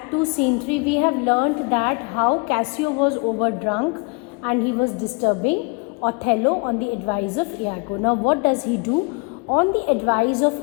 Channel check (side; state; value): right; quieter; 31.6 dB